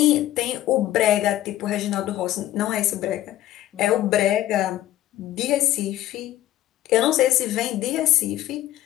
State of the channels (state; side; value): quieter; right; 13.9 dB